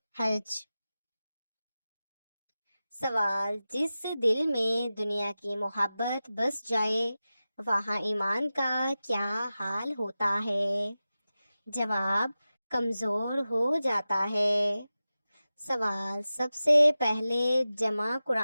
حج۔ سوال، جس دل میں دنیا کی محبت بس جائے وہاں ایمان کا کیا حال ہوتا ہے؟ جواب، کمزور ہو جاتا ہے۔ سوال، سب سے پہلے جمع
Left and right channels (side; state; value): both; inverted; correlation -0.95